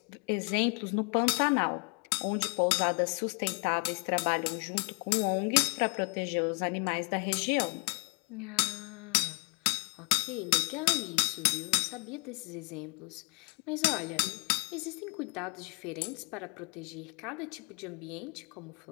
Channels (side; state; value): right; quieter; 34.9 dB